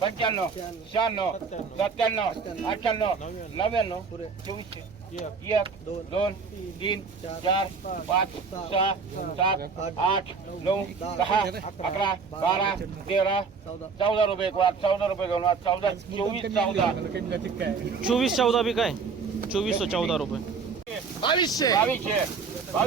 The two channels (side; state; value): left; quieter; 5.2 dB